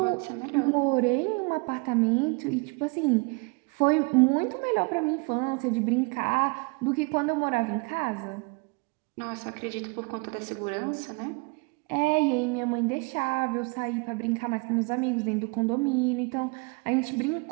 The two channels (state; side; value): quieter; left; 30.4 dB